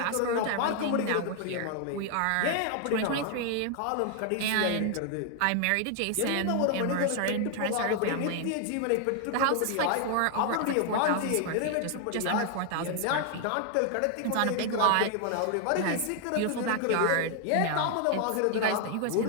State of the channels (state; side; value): different; both; correlation 0.00